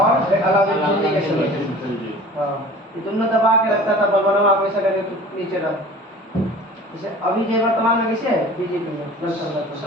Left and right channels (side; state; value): both; normal; correlation 0.43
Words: और अलाउद्दीन खिलजी के समय। हाँ, ये दोनों दबा के रखता था, बलबन आप ऐसा करके तो नीचे रहा। जैसे अभी जो वर्तमान में कैसे है बीजेपी में